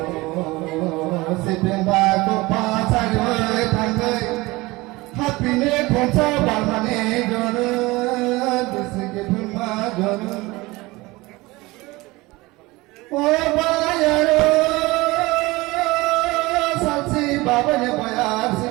sipin bago pasar thangkai hapine khoncha balmane gor bisike magar oh bayar salsi babane bayar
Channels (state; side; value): quieter; left; 21.6 dB